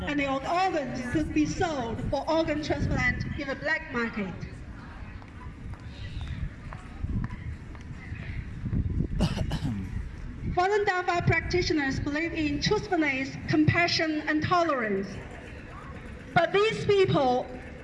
and your organs could be sold for organ transplant in the black market. Falun Dafa practitioners believe in truthfulness, compassion, and tolerance. But these people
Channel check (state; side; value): identical; both; correlation 1.00